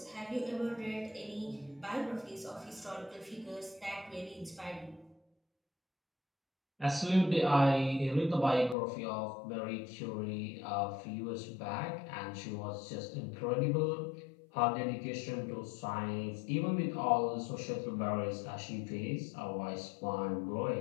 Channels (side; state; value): right; drops out; at 8.8 s